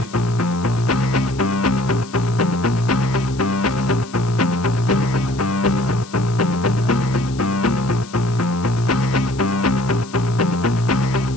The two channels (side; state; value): left; noise; hiss, 19 dB below the sound